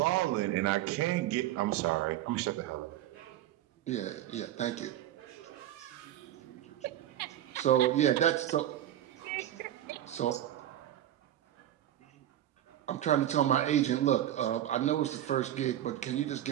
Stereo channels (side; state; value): left; quieter; 12.5 dB